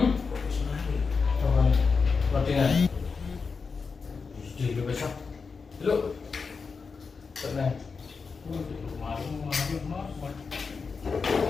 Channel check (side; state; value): right; quieter; 5.0 dB